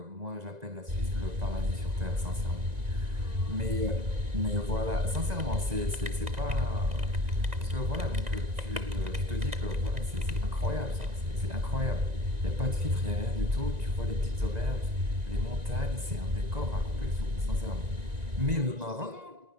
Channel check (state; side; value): late; left; 2.0 ms